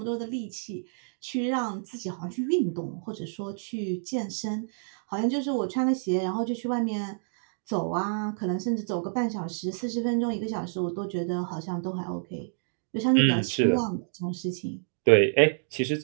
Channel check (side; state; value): left; silent; digital silence